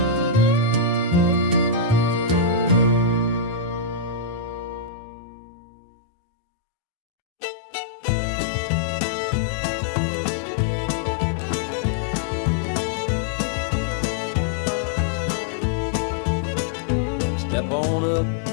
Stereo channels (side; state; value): right; drops out; at 4.9 s